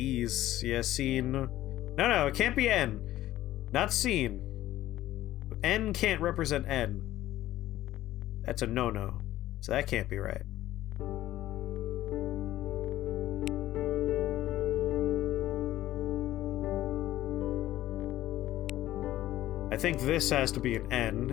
Yeah, seen. No, it can't be N. Not seen. N can't represent N. That's a no-no. So that can't be right. I think this has to be an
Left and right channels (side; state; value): right; quieter; 14.5 dB